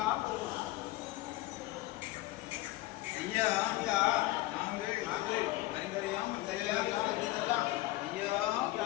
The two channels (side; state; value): right; quieter; 18.4 dB